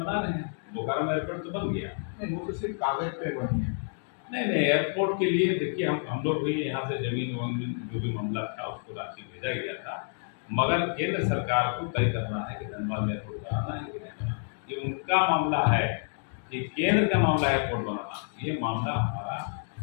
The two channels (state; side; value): silent; right; 59 dB below the other